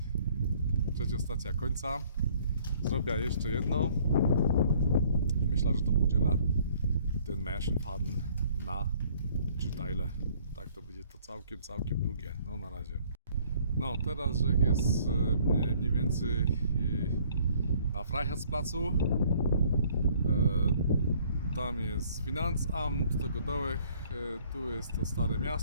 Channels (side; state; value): both; inverted; correlation -0.59